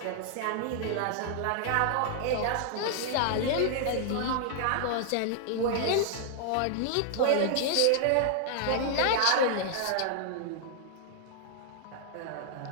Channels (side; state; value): both; different; correlation -0.01